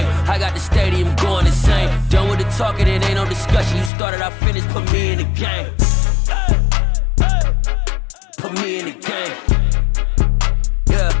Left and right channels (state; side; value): drops out; right; at 3.9 s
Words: I got the stadium going insane. Done with the talking, it ain't no discussion. You started, I finished, put me in the game. Put me in the game. Yeah,